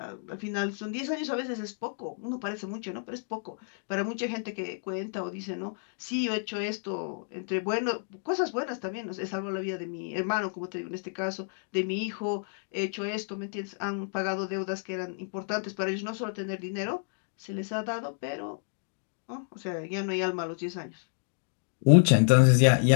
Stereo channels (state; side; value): silent; right; digital silence